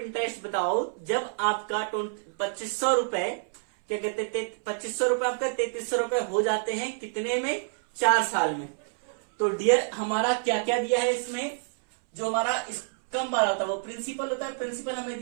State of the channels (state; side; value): silent; left; 60 dB below the other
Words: बताओ जब आपका 2500 रुपए, क्या कहते हैं, 2500 रुपए आपका 3300 रुपए हो जाते हैं, कितने में, 4 साल में। तो डियर हमारा क्या क्या दिया है इसमें, जो हमारा कम वाला होता है वो प्रिंसिपल होता है, प्रिंसिपल हमें